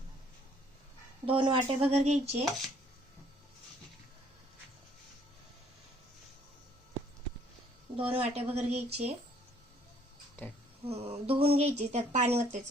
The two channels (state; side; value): normal; both; correlation 0.62